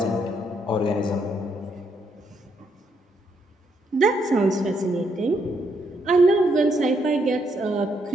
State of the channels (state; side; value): normal; both; correlation 0.75